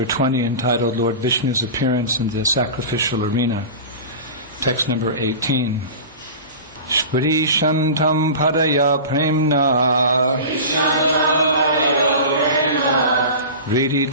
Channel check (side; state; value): both; inverted; correlation -0.32